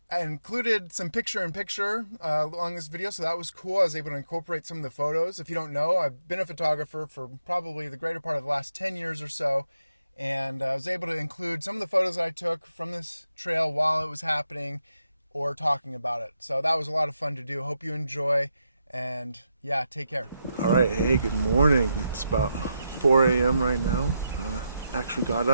I included some picture-in-picture along this video, so that was cool. I was able to incorporate some of the photos. If you don't know, I've been a photographer for probably the greater part of the last 10 years or so, and I was able to include some of the photos that I took from this trail while it was happening or talking about it. So that was a lot of fun to do. Hope you enjoy, and yeah, take care. All right, hey, good morning. It's about 4 a.m. right now. Actually got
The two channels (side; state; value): both; inverted; correlation -0.84